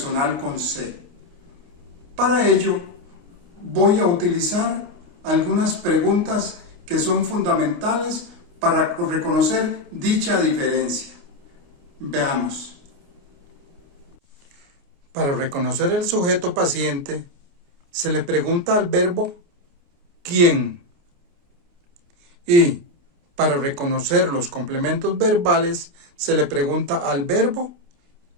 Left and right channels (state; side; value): late; left; 29 ms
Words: con C. Para ello, voy a utilizar algunas preguntas que son fundamentales para reconocer dicha diferencia. Veamos. Para reconocer el sujeto paciente, se le pregunta al verbo ¿quién? Y para reconocer los complementos verbales, se le pregunta al verbo